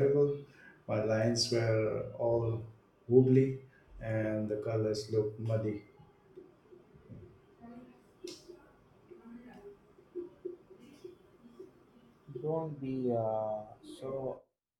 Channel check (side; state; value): both; identical; correlation 1.00